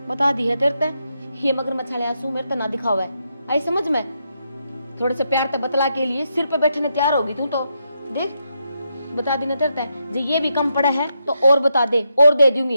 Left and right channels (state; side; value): inverted; both; correlation -0.82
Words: बता दी है तेरे ते, ये मगर मछले आंसू मेरे तो ना दिखावा है, आई समझ में। थोड़े से प्यार ते बतला के लिए सिर पे बैठने तैयार होगी तू तो, देख बता दी ना तेरे ते, जो ये भी कम पड़ा है तो और बता दे, और दे दूंगी,